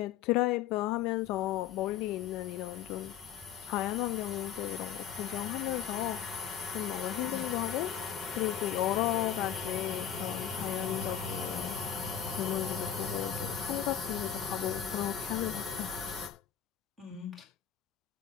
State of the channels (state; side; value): quieter; right; 9.3 dB